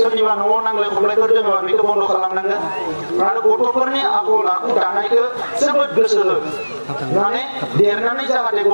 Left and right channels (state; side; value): inverted; both; correlation -1.00